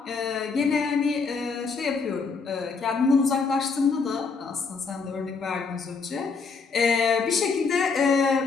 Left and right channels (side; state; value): right; quieter; 4.8 dB